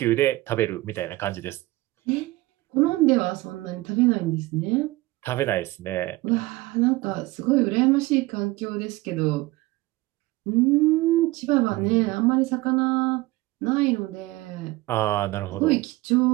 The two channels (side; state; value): left; quieter; 19.8 dB